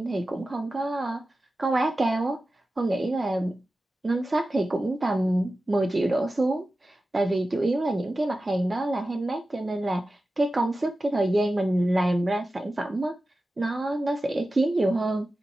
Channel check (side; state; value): both; normal; correlation 0.94